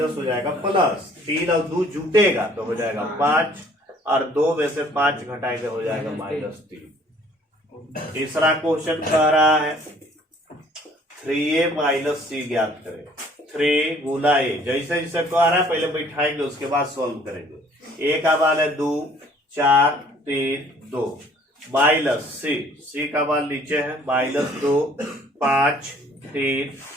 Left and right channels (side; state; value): both; normal; correlation 0.57